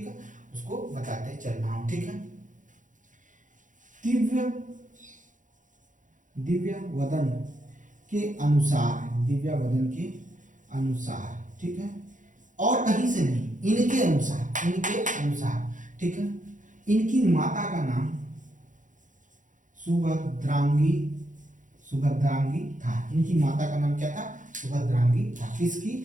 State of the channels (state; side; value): late; left; 0.37 ms